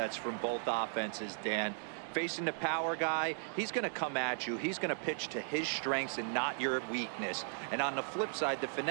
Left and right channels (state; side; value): silent; left; 53 dB below the other